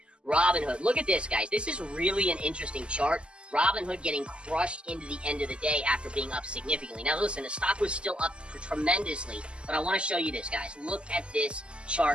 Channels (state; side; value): late; left; 0.052 ms